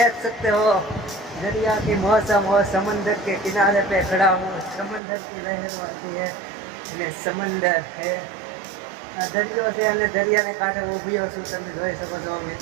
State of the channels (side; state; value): left; drops out; at 5.0 s